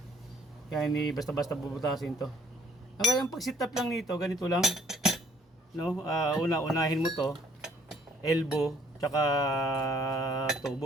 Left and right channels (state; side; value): normal; both; correlation 0.62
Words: Kaya hindi basta-basta bubutasin to. Kaya yung pag-sit up lang nito, ganito lang, no? Unahin mo to, elbow, tsaka